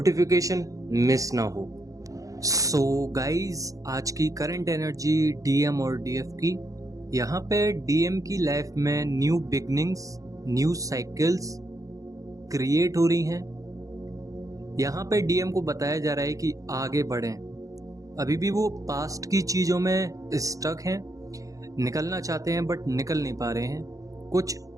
मिस ना हो। सो गाइस, आज की करंट एनर्जी डीएम और डीएफ की। यहाँ पे डीएम की लाइफ में new beginnings, new cycles create हो रही हैं। यहाँ पे डीएम को बताया जा रहा है कि आगे बढ़ें। अभी भी वो पास्ट की चीज़ों में स्टक हैं, निकलना चाहते हैं बट निकल नहीं पा रहे हैं। कुछ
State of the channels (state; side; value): late; left; 0.16 ms